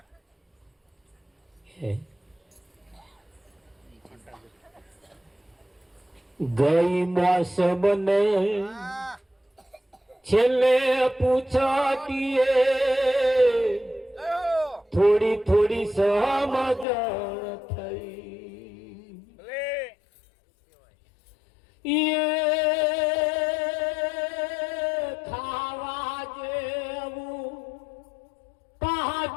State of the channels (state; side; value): drops out; right; at 16.9 s